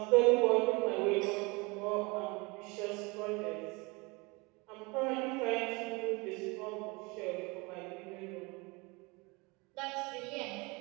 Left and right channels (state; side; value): quieter; left; 26.6 dB